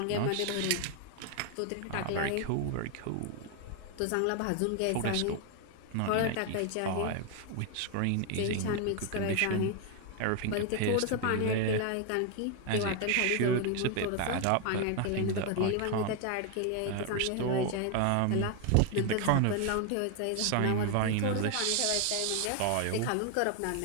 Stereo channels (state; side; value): different; both; correlation 0.01